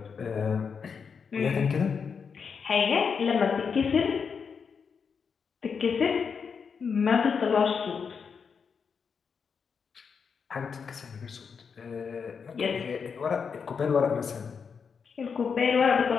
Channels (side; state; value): right; quieter; 6.1 dB